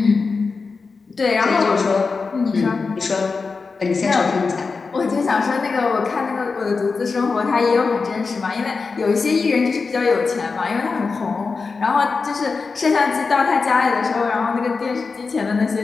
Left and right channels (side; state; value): right; quieter; 4.5 dB